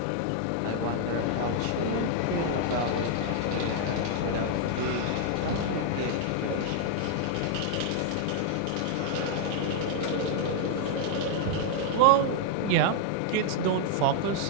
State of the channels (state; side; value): different; both; correlation 0.00